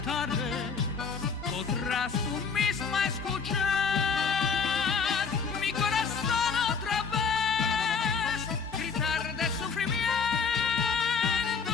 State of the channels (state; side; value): quieter; right; 5.6 dB